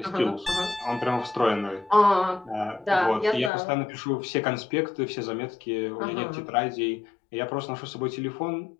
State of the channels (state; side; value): drops out; right; at 3.5 s